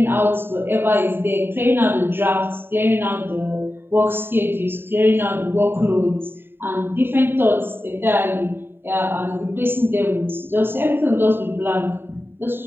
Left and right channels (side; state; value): left; late; 0.11 ms